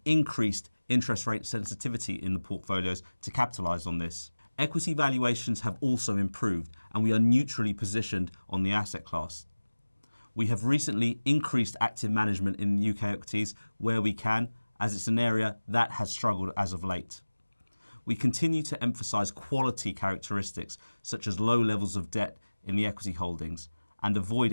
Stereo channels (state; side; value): inverted; both; correlation -1.00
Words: increased interest rate sensitivity in the portfolios to capitalise on this. Equity valuations have also improved, and we are neutrally positioned on the asset class. We have recently increased active management in UK equities where we can, as it's an area that has struggled as of late. We continue to emphasise quality characteristics such as low levels of debt in the equity holdings and avoid